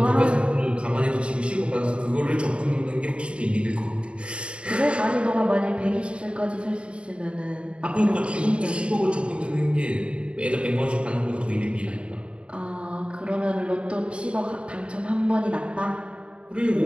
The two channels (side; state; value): left; late; 0.057 ms